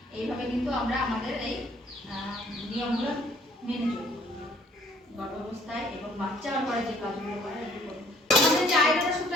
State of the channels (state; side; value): normal; both; correlation 0.60